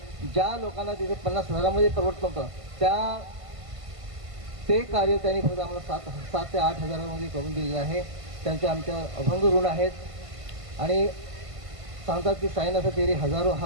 ज्या लोकांना तिथे 50,000 परवडत नव्हतं ते कार्य त्यांनी फक्त आम्हाला 7 ते 8,000 करून दिलेलं आहे. त्यांचे आमच्या अभंग ऋण आहेत. आणि सांगतात की साईनाथ तेरे हजारो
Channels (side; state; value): left; late; 1.5 ms